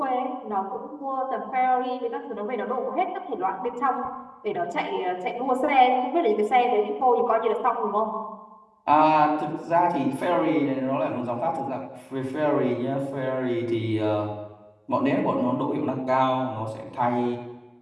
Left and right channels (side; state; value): both; identical; correlation 1.00